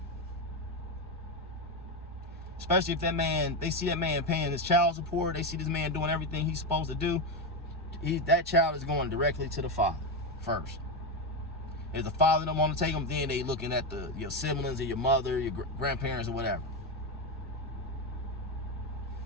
Especially if that man, they see that man paying his child support, they see this man doing everything he's supposed to do. That child is going directly to the father first. If the father don't want to take them, then they looking at your siblings or your mother, your grandparents or whatever.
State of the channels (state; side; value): normal; both; correlation 0.11